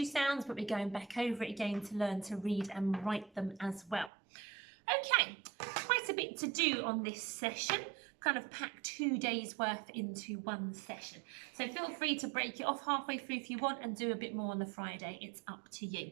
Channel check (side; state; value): left; drops out; at 4.1 s